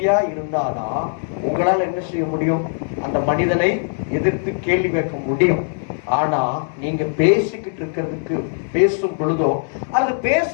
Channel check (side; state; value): right; silent; digital silence